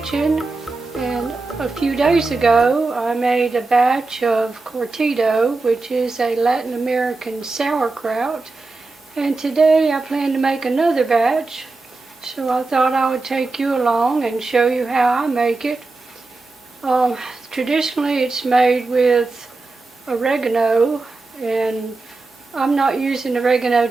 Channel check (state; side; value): quieter; left; 3.6 dB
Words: and a few days ago I made a batch of Cortido, which is a Latin American sauerkraut, and today I plan to make another batch, so I thought I would take you along and show you how I make it. Traditionally it's made with oregano, and I'm not using oregano